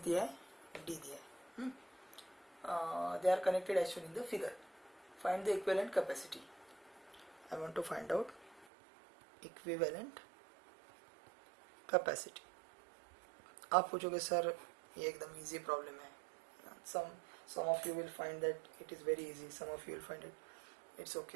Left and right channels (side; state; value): left; drops out; at 8.7 s